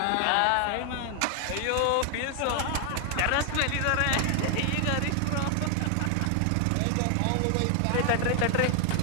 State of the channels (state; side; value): different; both; correlation 0.00